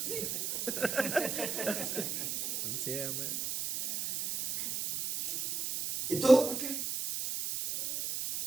Sí, amén. ¿Y todo por qué?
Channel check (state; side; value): noise; right; hiss, 2 dB below the sound